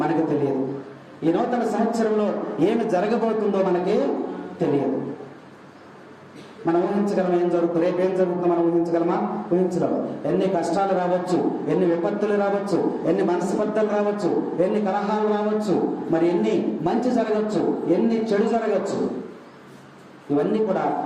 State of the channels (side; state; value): both; identical; correlation 1.00